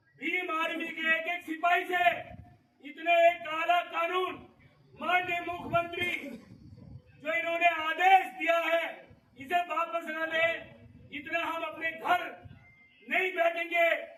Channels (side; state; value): both; identical; correlation 1.00